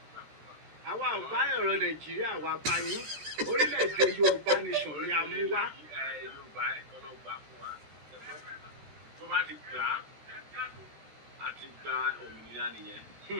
Àwa ò bá ọ̀rọ̀ Nàìjíríà wa bá yín orílẹ̀-èdè Yorùbá nation ni a mú wá. Yorùbá ẹ̀kọ́ ló gbà fún wa. Tó bá ti gbà á ti gba òmìnira nìyẹn.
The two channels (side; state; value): left; late; 13 ms